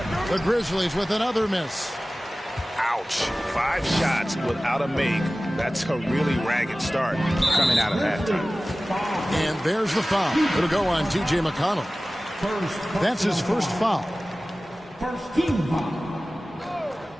The Grizzlies with another miss. Ouch. 5 shots without a make. That's a really ragged start coming out of halftime. And there's the foul. It'll go on T.J. McConnell. That's his first foul. First team foul.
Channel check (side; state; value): both; normal; correlation 0.97